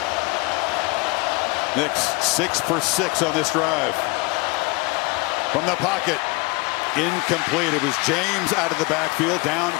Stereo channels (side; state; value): right; quieter; 25.9 dB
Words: Nix 6 for 6 on this drive. From the pocket, incomplete. It was James out of the backfield, down